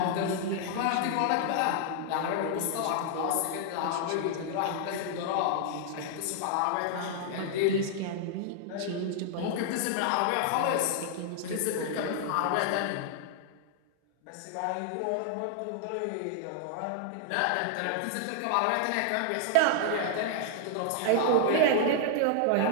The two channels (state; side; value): different; both; correlation -0.01